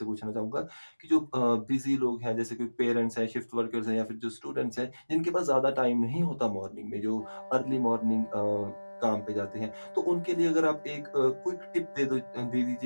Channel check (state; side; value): inverted; both; correlation -1.00